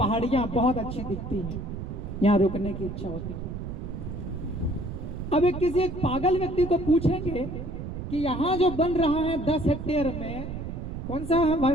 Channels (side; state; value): right; noise; rumble, 7 dB below the sound